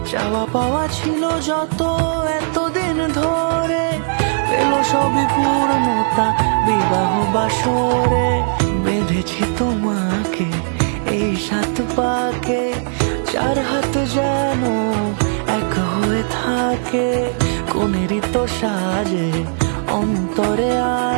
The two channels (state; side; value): silent; left; 60 dB below the other